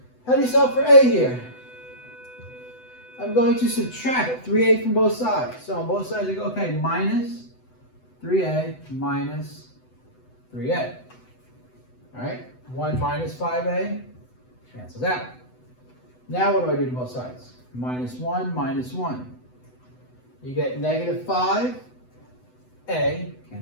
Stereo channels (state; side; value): late; right; 8.0 ms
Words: How do you solve for a here? I'm going to subtract 3a from both sides. So on both sides, I go, okay, minus 3a minus 3a. All right, 1 minus 5a cancels out. Now what do I do to both sides? Minus 1 minus 1. You get negative 5a,